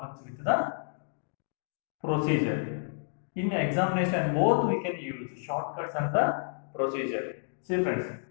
with the procedure. In examination, both we can use shortcuts and the procedure. See friends,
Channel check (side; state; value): right; silent; digital silence